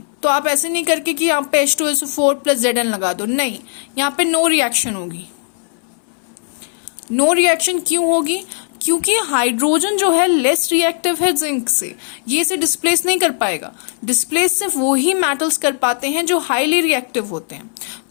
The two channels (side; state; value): right; silent; 63 dB below the other